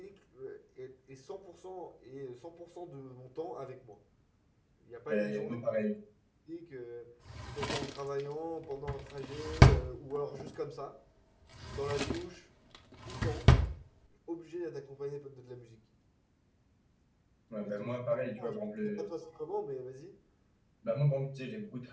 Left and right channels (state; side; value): identical; both; correlation 1.00